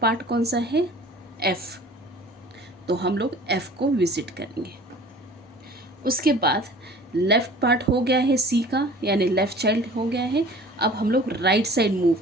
कौन सा है? एफ़, तो हम लोग एफ़ को विज़िट करेंगे। उसके बाद लेफ़्ट पार्ट हो गया है सी का, यानी लेफ़्ट चाइल्ड हो गया है। अब हम लोग राइट साइड मूव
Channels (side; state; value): both; normal; correlation 0.46